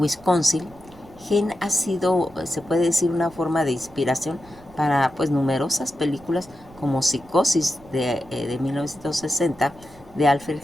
Gein ha sido, se puede decir, una forma de inspiración para pues numerosas películas como Psicosis de 1960 de Alfred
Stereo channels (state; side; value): noise; right; rumble, 23 dB below the sound